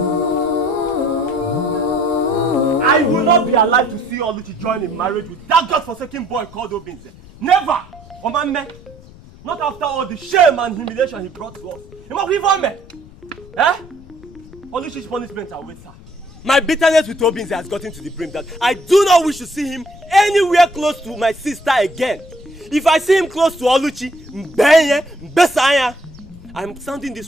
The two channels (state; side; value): noise; left; rumble, 21 dB below the sound